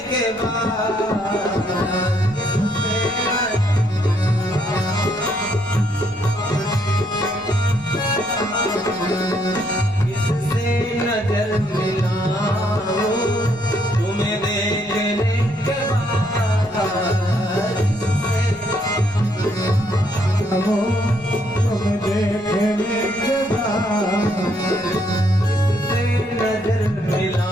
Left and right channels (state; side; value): normal; both; correlation 0.71